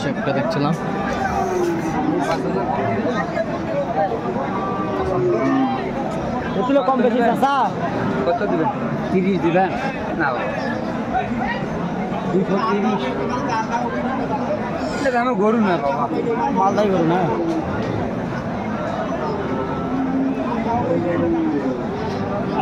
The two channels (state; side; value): identical; both; correlation 1.00